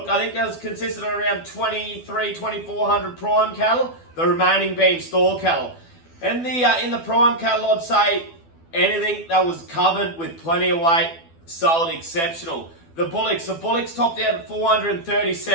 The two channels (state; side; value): late; right; 12 ms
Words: I think that was consistent of around 2,400 prime cattle, the remaining being store cattle. And in the prime cattle, I'd say anything that was covered with plenty of weight sold exceptional. The bullocks topped out at 430